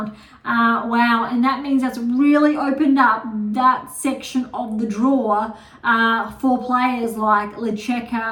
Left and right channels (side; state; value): both; identical; correlation 1.00